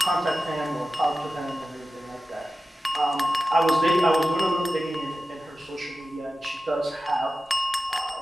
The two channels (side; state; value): both; normal; correlation 0.94